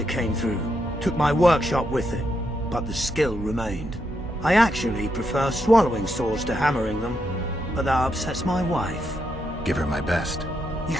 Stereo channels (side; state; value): both; normal; correlation 0.81